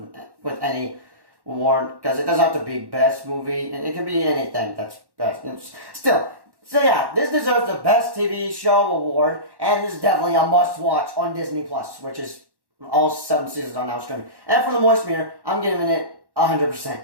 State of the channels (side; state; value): left; late; 1.1 ms